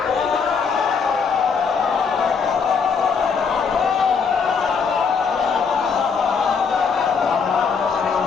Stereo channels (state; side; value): quieter; right; 5.7 dB